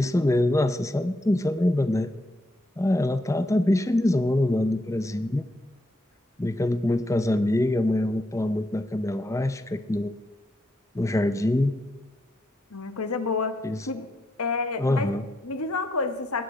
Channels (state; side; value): normal; both; correlation 0.81